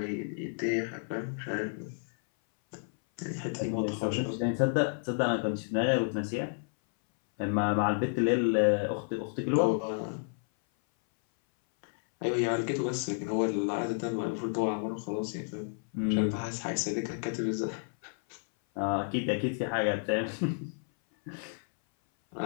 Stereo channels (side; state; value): right; silent; 57 dB below the other